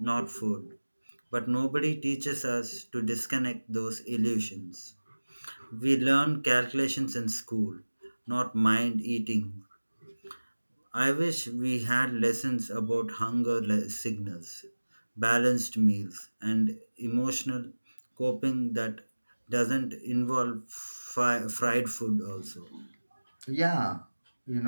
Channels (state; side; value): inverted; both; correlation -1.00